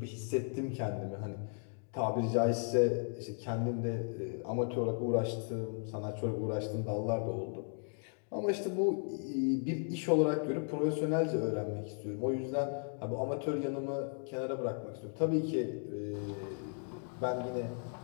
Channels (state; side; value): silent; right; 54 dB below the other